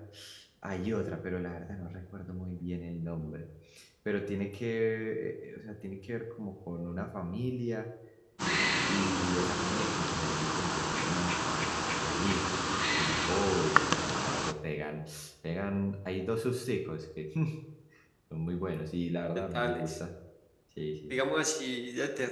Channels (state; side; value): identical; both; correlation 1.00